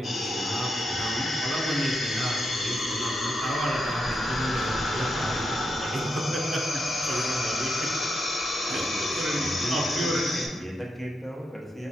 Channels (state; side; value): normal; both; correlation 0.84